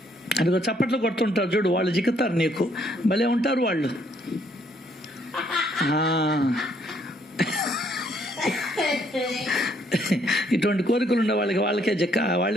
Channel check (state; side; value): normal; both; correlation 0.68